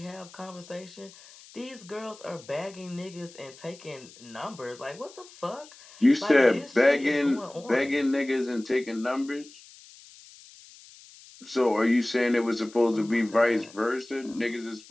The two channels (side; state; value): left; noise; hiss, 21 dB below the sound